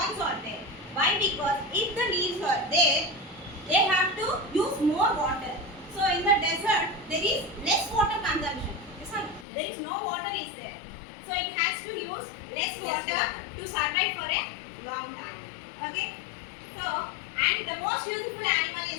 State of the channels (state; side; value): drops out; right; at 9.5 s